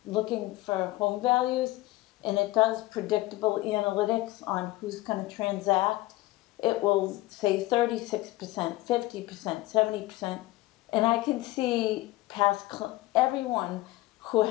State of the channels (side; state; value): right; quieter; 18.5 dB